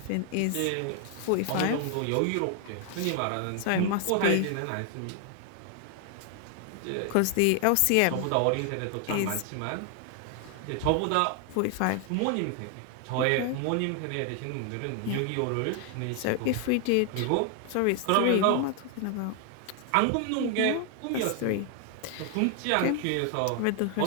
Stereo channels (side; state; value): both; different; correlation 0.00